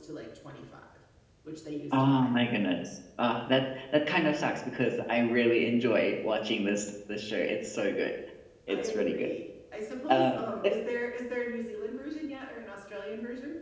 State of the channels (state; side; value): identical; both; correlation 1.00